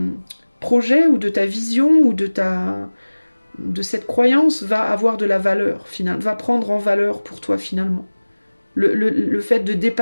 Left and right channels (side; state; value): both; inverted; correlation -1.00